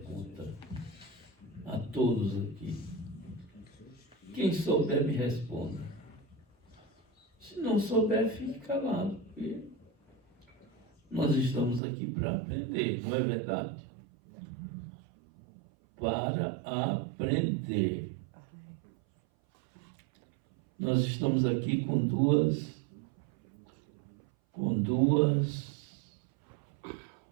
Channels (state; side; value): drops out; left; at 11.8 s